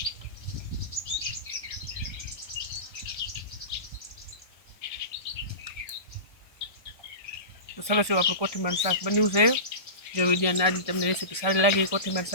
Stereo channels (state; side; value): late; right; 1.4 ms